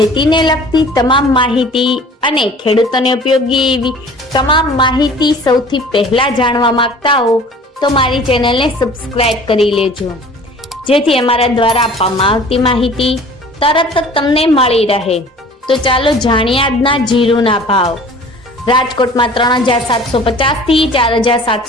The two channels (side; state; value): both; normal; correlation 0.47